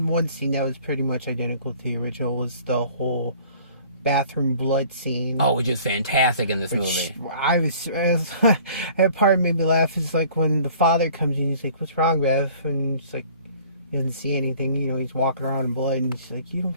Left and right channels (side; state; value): both; inverted; correlation -0.52